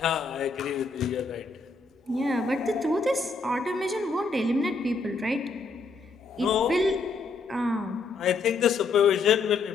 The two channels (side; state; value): right; quieter; 4.2 dB